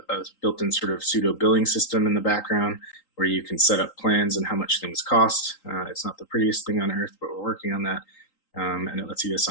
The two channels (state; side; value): late; right; 3.8 ms